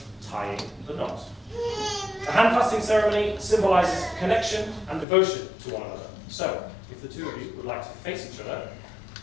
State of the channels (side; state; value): right; drops out; at 5.1 s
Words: tying the knot. The hand-fasting ceremony symbolizes connection and devotion to one another. So, if the two of you would like to face each other